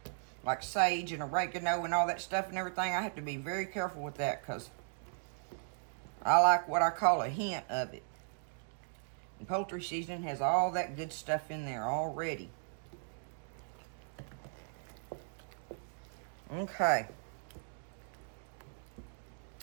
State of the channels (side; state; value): left; silent; digital silence